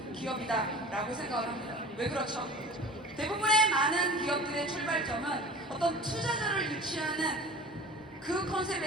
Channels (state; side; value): normal; both; correlation 0.40